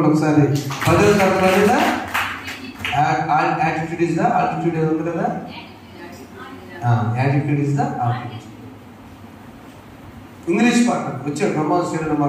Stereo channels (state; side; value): identical; both; correlation 1.00